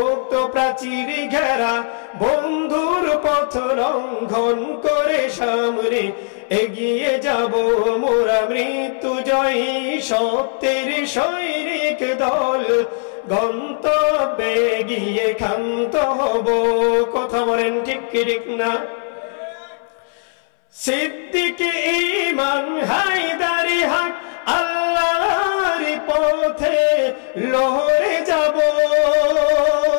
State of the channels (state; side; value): silent; right; 65 dB below the other